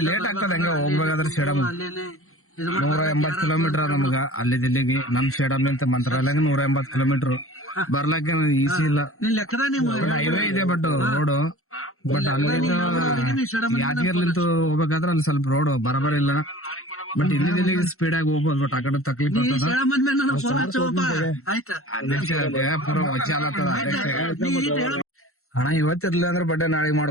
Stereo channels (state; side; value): late; right; 0.63 ms